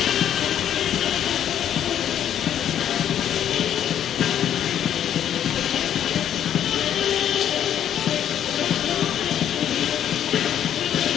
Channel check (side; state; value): right; quieter; 10.1 dB